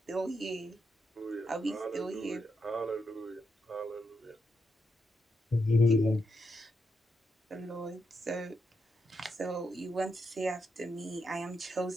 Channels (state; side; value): normal; both; correlation 0.83